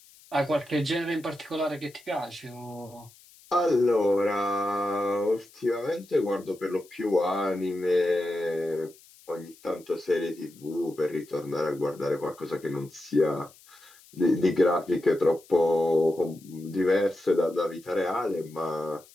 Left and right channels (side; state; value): left; noise; hiss, 25 dB below the sound